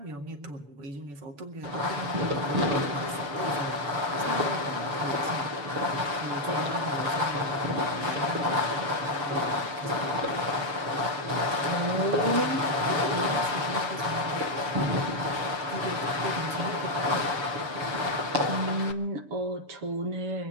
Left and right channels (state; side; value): late; left; 7.0 ms